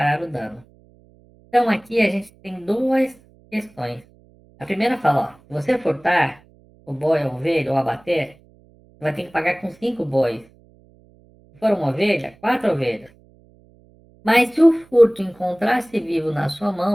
o dano. Então, aqui a gente tem duas questões. A primeira fala, ó, se você furtar o boi, a ovelha ou abater, você vai ter que pagar com 5 bois. Se for uma ovelha, 4 ovelhas. Mas se o furto encontrar-se vivo na sua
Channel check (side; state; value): right; noise; hum, 29 dB below the sound